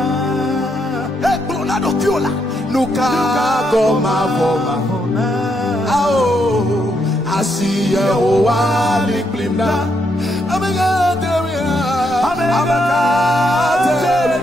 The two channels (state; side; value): normal; both; correlation 0.77